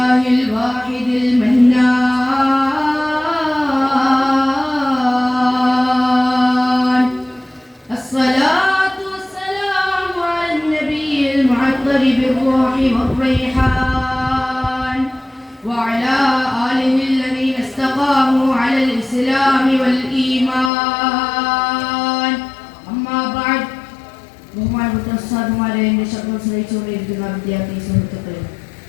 الواحد المنان. الصلاة والسلام على النبي المعطر بالروح والريحان وعلى آله الذين استقاموا على الإسلام والإيمان. أما بعد. ബഹുമാനപ്പെട്ട ഉസ്താദുമാരെ, എന്റെ ശബ്ദം ശ്രവിച്ചുകൊണ്ടിരിക്കുന്ന വിദ്യാർത്ഥി സുഹൃത്തുക്കളെ,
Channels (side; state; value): right; drops out; at 20.7 s